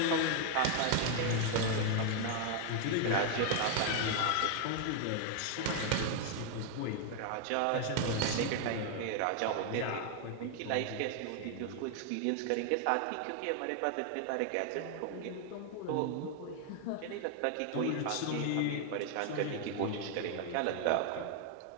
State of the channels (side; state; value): both; different; correlation 0.00